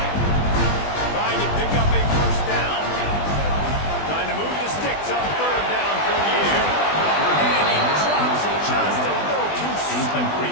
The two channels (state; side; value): late; right; 20 ms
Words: Trying to pick up a first down. Trying to move the sticks on 3rd down for the air. And he drops it just a little too slippery